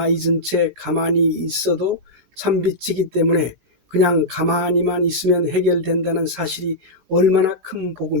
잊은 채 가만히 있어도 참빛이기 때문에 그냥 가만히만 있으면 해결된다는 사실이 얼마나 큰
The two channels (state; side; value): late; left; 18 ms